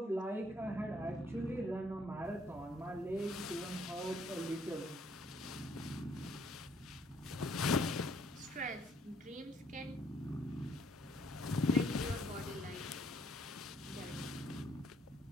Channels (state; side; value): normal; both; correlation 0.65